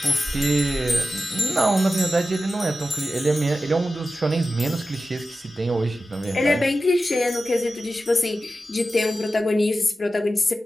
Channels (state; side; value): normal; both; correlation 0.93